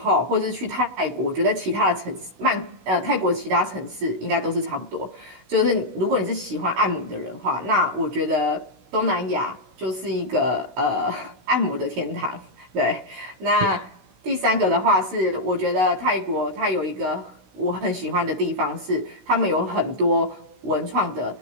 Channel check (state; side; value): late; left; 16 ms